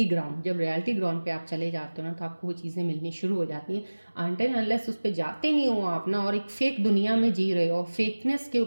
ground. जब रियलिटी ग्राउंड पे आप चले जाते हो ना, तो आपको वो चीज़ें मिलनी शुरू हो जाती हैं। अनटिल अनलेस उस पर जाते नहीं हो आप ना, और एक फेक दुनिया में जी रहे हो, फेकनेस के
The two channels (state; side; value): inverted; both; correlation -1.00